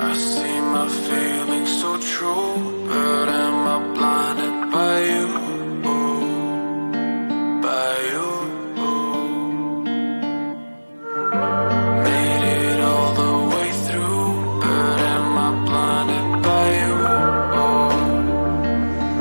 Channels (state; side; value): inverted; both; correlation -1.00